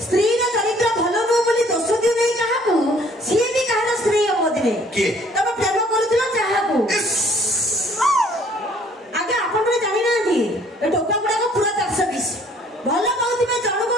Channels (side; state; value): both; normal; correlation 0.59